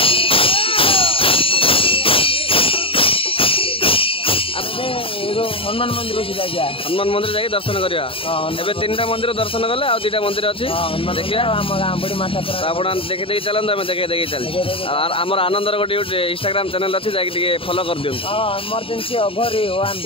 हनुमान मंदिर हनुमान मंदिर जाकि दर्शन करा एबे 3टा मंदिर दर्शन कले आ 2टा मंदिर अच्छी देखिए आप देखी देखी चलते आम देखे देखी चल आमर आनंदर गोटे इंस्टाग्राम चैनल अच्छी जाकि फॉलो कर दियो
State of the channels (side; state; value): right; late; 0.26 ms